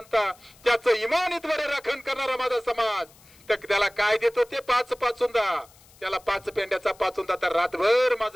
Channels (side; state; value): left; noise; hiss, 27 dB below the sound